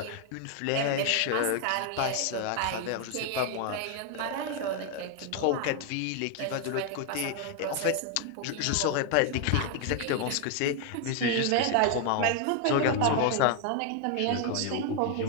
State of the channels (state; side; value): different; both; correlation 0.01